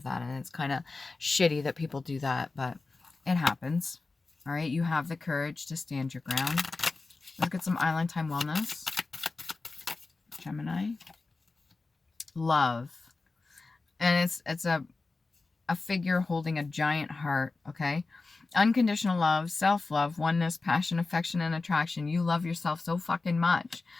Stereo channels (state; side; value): quieter; right; 3.7 dB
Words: that, and it's kind of shitty that people do that, but it happens. All right, you have the courage to stand your ground. Let's get some Island Time Wellness. Gemini. Love. And it's a figure holding a giant heart, okay? Unconditional love, self-love, oneness, passion, affection, and attraction. You love yourself so fucking much.